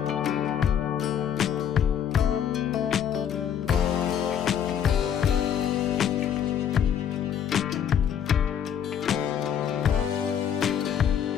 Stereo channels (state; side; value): quieter; right; 8.8 dB